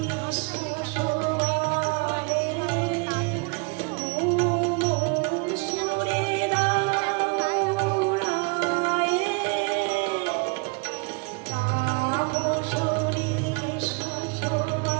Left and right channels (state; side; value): quieter; left; 31.9 dB